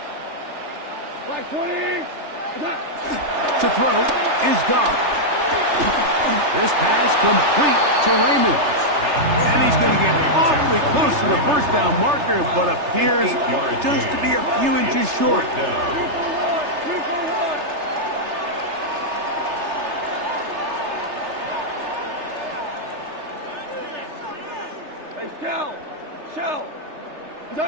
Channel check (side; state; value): left; late; 3.3 ms